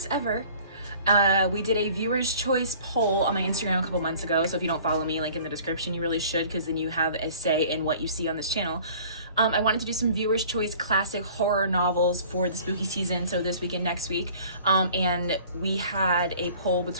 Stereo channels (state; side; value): inverted; both; correlation -0.49